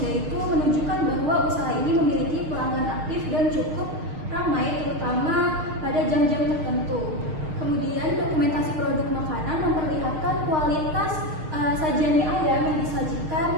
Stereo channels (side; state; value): left; late; 6.5 ms